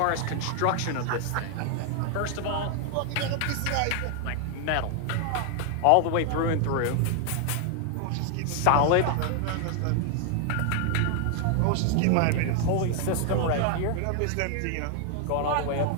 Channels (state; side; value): different; both; correlation 0.00